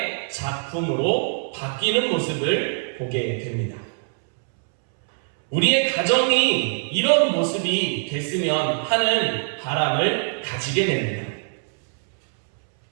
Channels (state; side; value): silent; left; 64 dB below the other